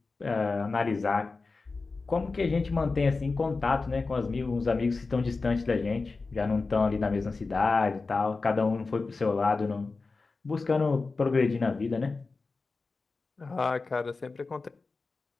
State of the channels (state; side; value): quieter; right; 4.0 dB